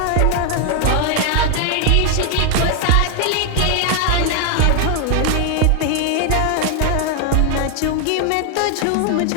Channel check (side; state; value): both; different; correlation 0.00